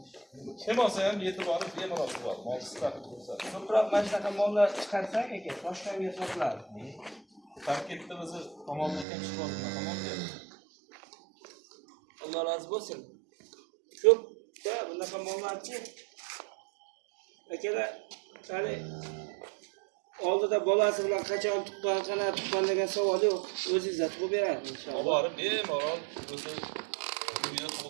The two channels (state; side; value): drops out; left; at 9.1 s